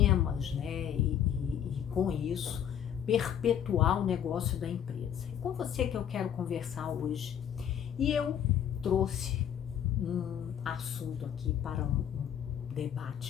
né? E com isso perpetuar o negócio da empresa. É com você que eu quero conversar hoje. E eu trouxe um assunto aqui para um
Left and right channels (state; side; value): quieter; right; 9.5 dB